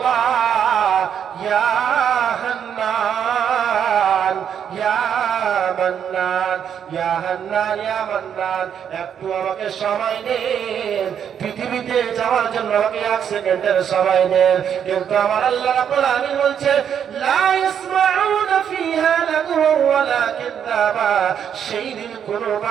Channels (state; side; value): quieter; left; 8.4 dB